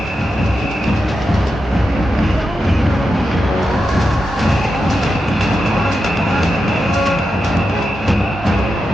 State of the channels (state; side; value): normal; both; correlation 0.88